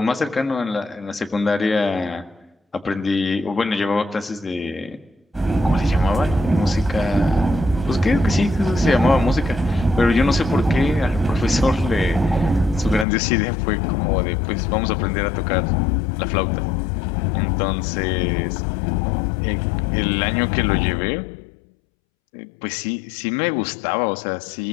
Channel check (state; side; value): drops out; right; at 13.1 s